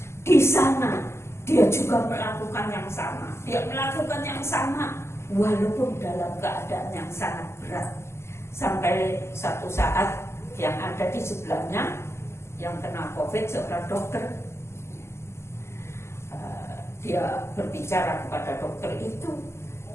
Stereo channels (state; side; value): late; right; 0.13 ms